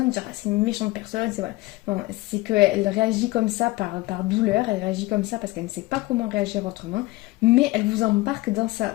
dire ah, c'est une méchante personne, c'est voilà. Non, c'est qu'elle réagit comme ça par douleur, elle réagit comme ça parce qu'elle ne sait pas comment réagir autrement, mais elle vous embarque dans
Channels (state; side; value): quieter; right; 20.2 dB